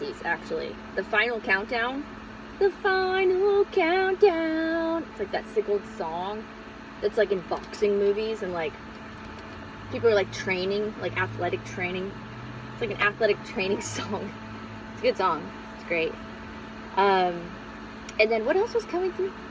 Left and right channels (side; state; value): both; identical; correlation 1.00